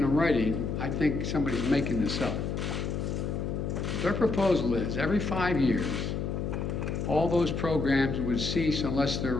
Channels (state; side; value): noise; left; hum, 2 dB below the sound